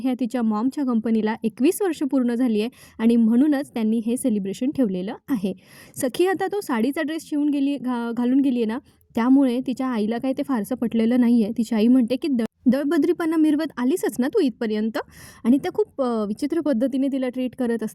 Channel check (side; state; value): both; identical; correlation 1.00